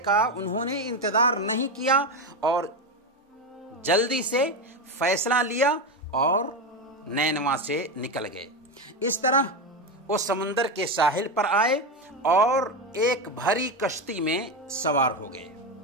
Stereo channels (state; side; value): normal; both; correlation 0.14